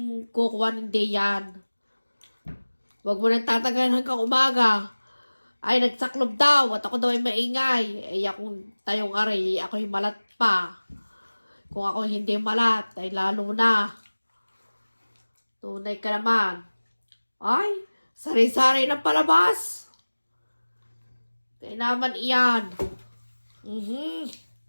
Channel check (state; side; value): inverted; both; correlation -1.00